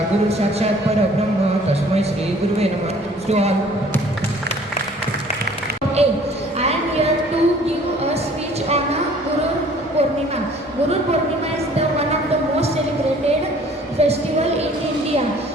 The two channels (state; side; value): normal; both; correlation 0.54